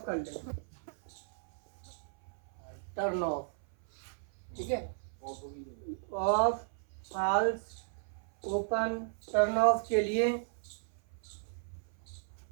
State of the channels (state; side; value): silent; left; 55 dB below the other